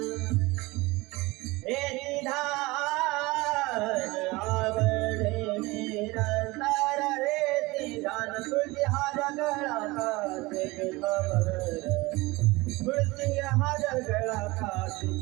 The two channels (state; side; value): quieter; left; 22.2 dB